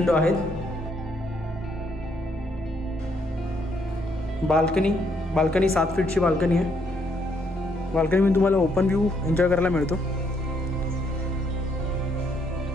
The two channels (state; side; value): normal; both; correlation 0.72